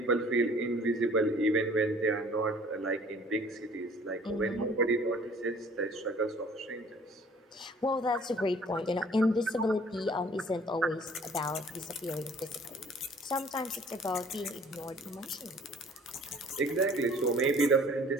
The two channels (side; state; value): both; normal; correlation 0.53